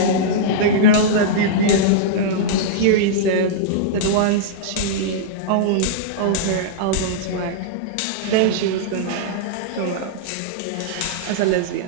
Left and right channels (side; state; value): both; different; correlation -0.03